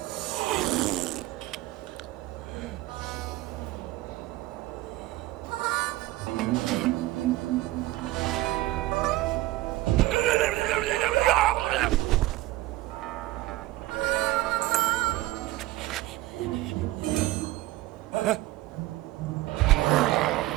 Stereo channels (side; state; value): left; quieter; 17.3 dB